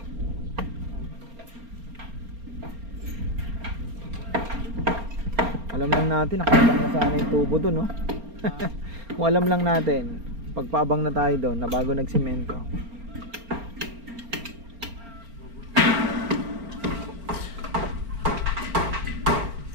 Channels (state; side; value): late; left; 4.3 ms